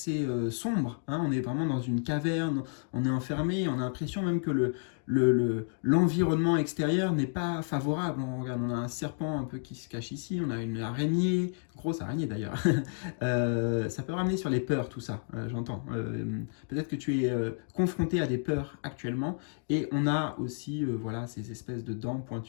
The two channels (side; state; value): right; silent; 57 dB below the other